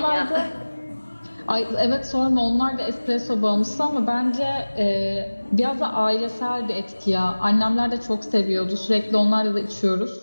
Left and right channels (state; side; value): inverted; both; correlation -1.00